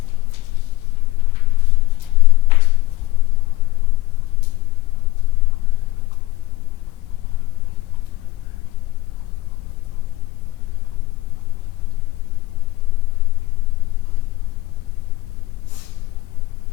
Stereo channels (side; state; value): right; quieter; 18.3 dB